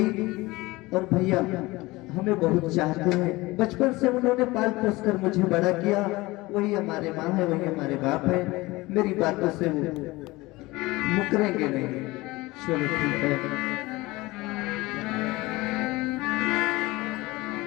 और भैया हमें बहुत चाहते हैं, बचपन से उन्होंने पाल पोस कर मुझे बड़ा किया, वही हमारे माँ है, वही हमारे बाप है, मेरी बातों से वो मुकरेंगे नहीं। चलो ठीक है।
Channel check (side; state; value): right; quieter; 20.9 dB